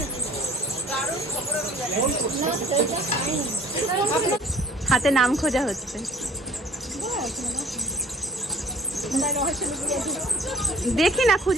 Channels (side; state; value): both; normal; correlation 0.52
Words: হাতে নাম খোঁজা হচ্ছে। দেখি না